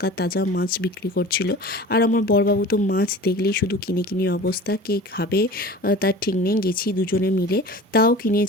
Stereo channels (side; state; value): both; normal; correlation 0.39